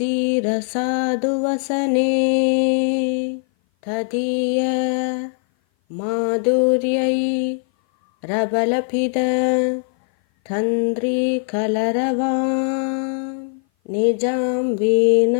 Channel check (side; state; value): right; silent; 57 dB below the other